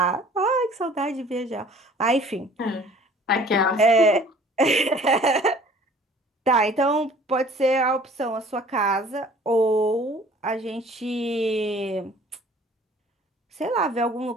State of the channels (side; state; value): both; normal; correlation 0.51